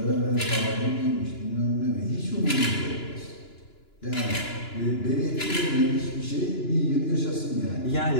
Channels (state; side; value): late; right; 2.9 ms